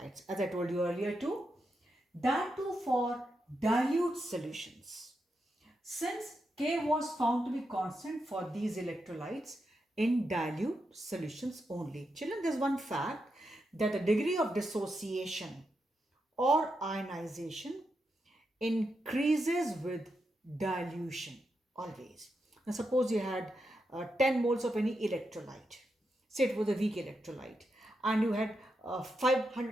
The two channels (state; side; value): normal; both; correlation 0.85